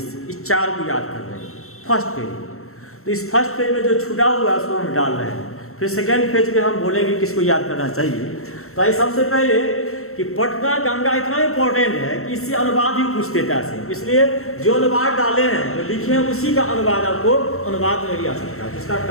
इस 4 को याद कर रहे हैं फर्स्ट पेज। तो इस फर्स्ट पेज में जो छूटा हुआ है उसको हम डाल रहे हैं। फिर सेकेंड पेज में हम बोलेंगे किसको याद करना चाहिए। तो आइए सबसे पहले कि पटना गंगा इतना इंपॉर्टेंट है कि इससे अनुवाद ही पूछ देता है, इसलिए जो अनुवाद डाले हैं जो लिखे हैं उसी का अनुवाद आपको अनुवाद में भी आ सकता है, जिसका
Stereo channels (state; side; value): late; right; 0.63 ms